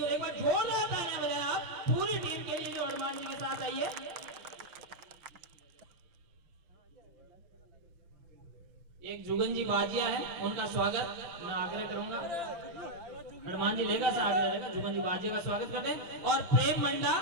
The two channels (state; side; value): late; left; 5.9 ms